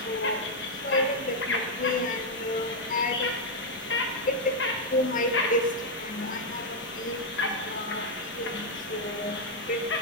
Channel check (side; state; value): both; normal; correlation 0.00